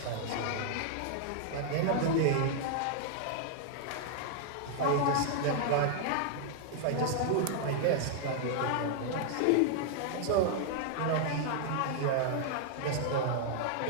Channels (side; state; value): both; different; correlation -0.01